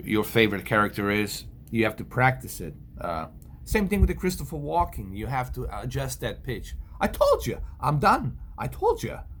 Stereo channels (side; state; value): both; identical; correlation 1.00